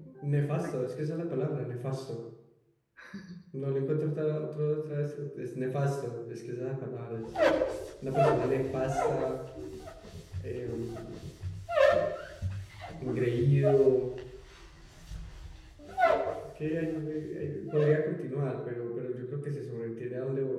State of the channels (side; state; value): both; identical; correlation 1.00